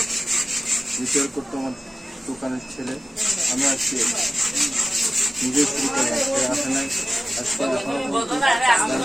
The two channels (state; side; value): normal; both; correlation 0.96